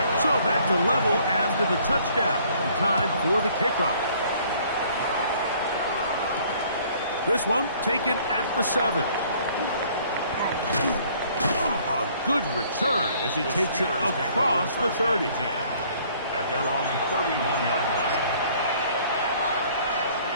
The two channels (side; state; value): both; inverted; correlation -0.59